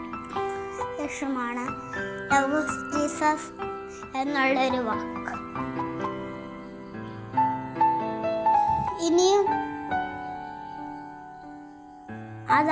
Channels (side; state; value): both; identical; correlation 1.00